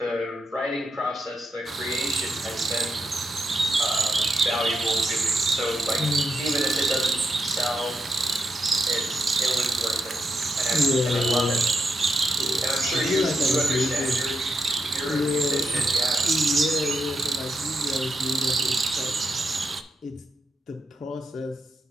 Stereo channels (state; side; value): normal; both; correlation 0.82